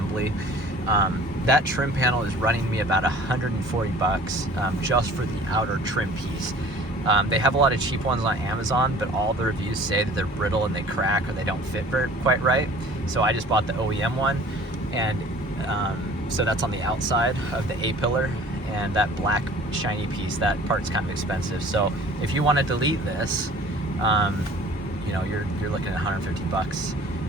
That trim panel is running me about $140 just for the outer trim piece. They have a lot of cheap ones on Amazon, but all the reviews say that they're brittle and they crack or they don't fit quite right. So I just bought the OEM one, and so that's on the outside of the A-pillar, and that black shiny piece, that part's kind of expensive. So if you want to delete this, you know, you're looking at $150,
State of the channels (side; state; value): both; normal; correlation 0.48